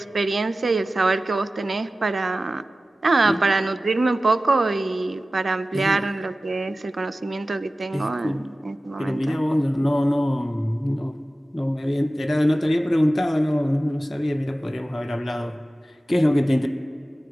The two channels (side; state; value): both; normal; correlation 0.96